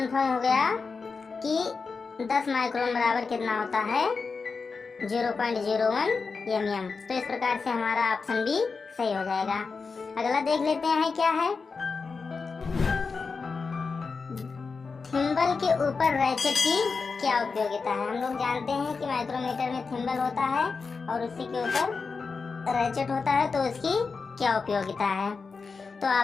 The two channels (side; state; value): right; quieter; 4.7 dB